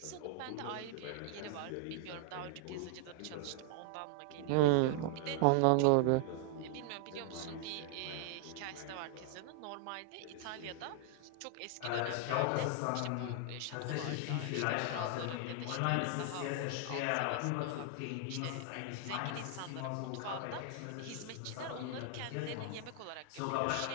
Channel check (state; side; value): different; both; correlation 0.00